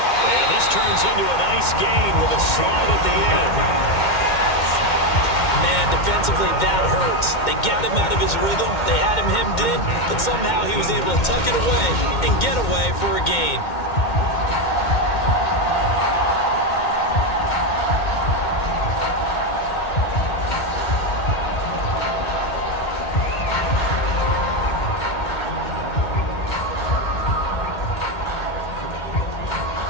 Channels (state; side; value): late; right; 2.1 ms